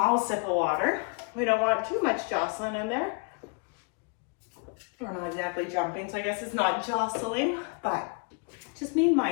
sip of water. We don't want too much jostling in there. We're not exactly jumping, so I guess it's not jostling, but just being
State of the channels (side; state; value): right; quieter; 34.8 dB